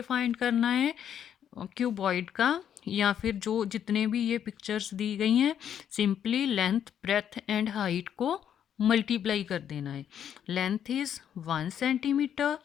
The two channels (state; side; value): quieter; right; 9.3 dB